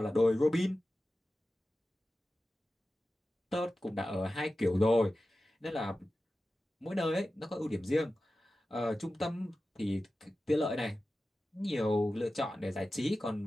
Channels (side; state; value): both; normal; correlation 0.94